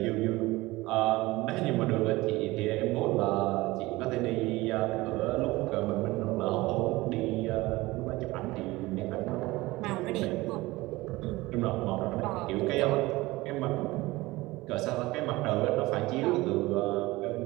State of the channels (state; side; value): quieter; left; 20.1 dB